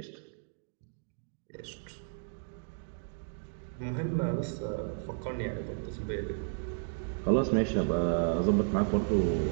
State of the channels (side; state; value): left; silent; digital silence